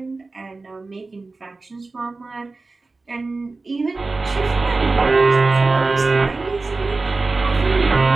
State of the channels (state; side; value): quieter; left; 3.6 dB